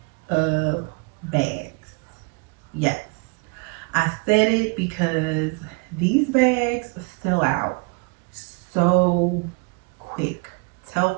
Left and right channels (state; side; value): quieter; left; 30.5 dB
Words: of bags. Yes, I said it because these bags sell out so quick.